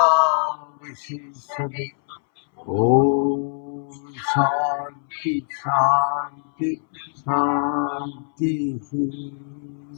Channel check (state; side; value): silent; right; 63 dB below the other